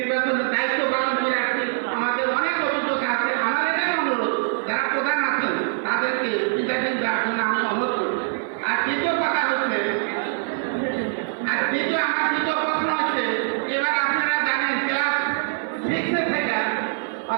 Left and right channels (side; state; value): left; silent; 63 dB below the other